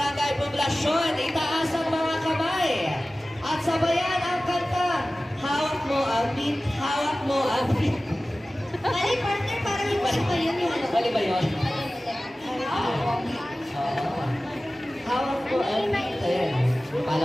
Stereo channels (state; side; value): normal; both; correlation 0.97